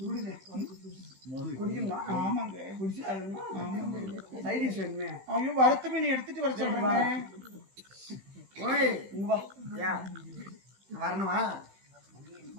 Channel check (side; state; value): left; late; 15 ms